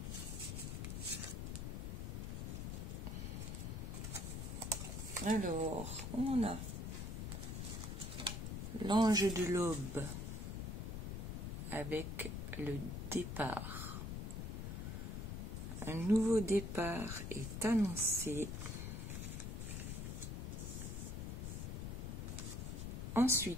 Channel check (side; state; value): left; noise; rumble, 4 dB below the sound